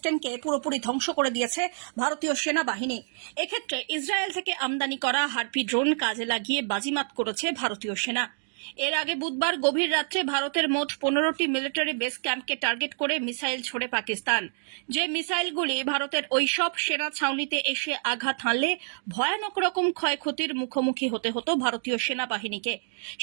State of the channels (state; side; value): silent; left; digital silence